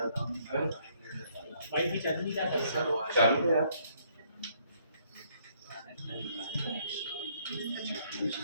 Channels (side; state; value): both; inverted; correlation -0.67